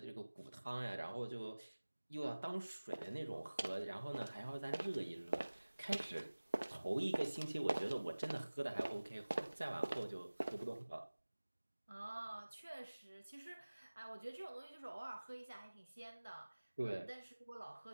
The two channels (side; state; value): both; inverted; correlation -1.00